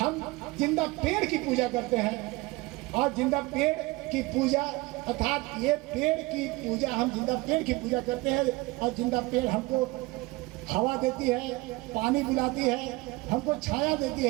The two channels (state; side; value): quieter; left; 22.2 dB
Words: जिंदा पेड़ की पूजा करते हैं और जिंदा पेड़ की पूजा अर्थात ये पेड़ की पूजा, हम जिंदा पेड़ की पूजा करते हैं और जिंदा पेड़ हमको हवा देती है, पानी पिलाती है, हमको छाया देती